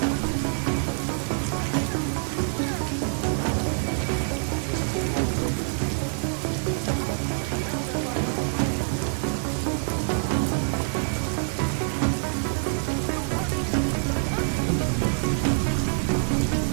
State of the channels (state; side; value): silent; left; 61 dB below the other